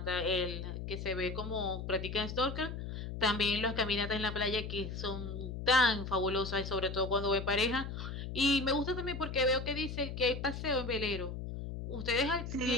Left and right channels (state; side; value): noise; left; hum, 6 dB below the sound